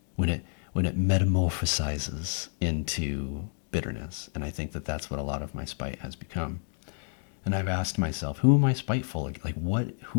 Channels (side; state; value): right; silent; digital silence